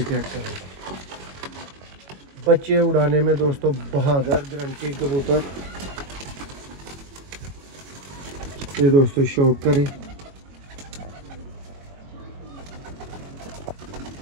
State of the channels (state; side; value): late; left; 22 ms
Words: चेक करें, बच्चे उड़ाने में दोस्तों बहादुर गारंटी कबूतर। ये दोस्तों शौक करें,